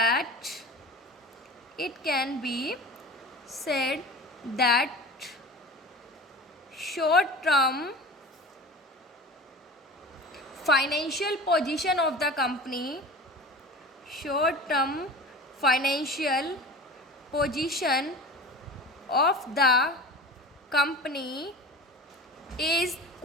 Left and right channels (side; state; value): both; normal; correlation 0.36